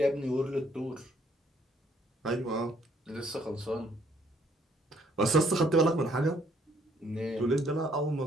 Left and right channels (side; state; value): both; normal; correlation 0.66